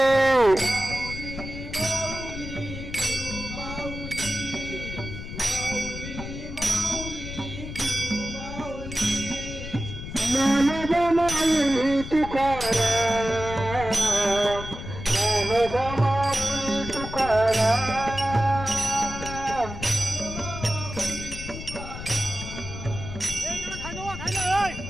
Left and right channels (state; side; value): noise; left; rumble, 9 dB below the sound